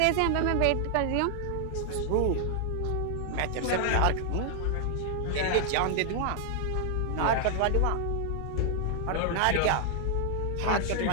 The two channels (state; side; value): different; both; correlation 0.00